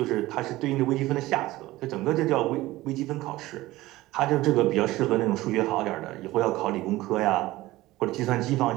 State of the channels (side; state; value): left; quieter; 17.8 dB